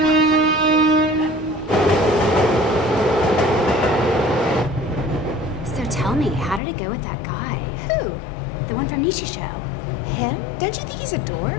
So tell me, how did it go with that guy? Who? The one from Nishi Show. Him? Don't you think he's a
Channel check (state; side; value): drops out; right; at 6.6 s